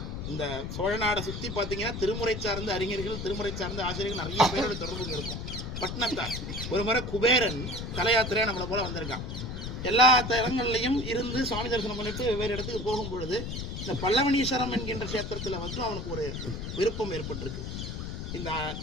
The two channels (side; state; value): left; noise; rumble, 6 dB below the sound